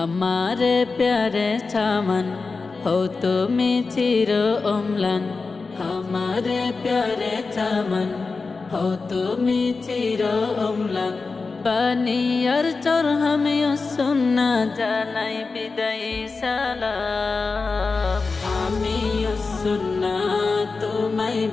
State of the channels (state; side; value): quieter; right; 4.2 dB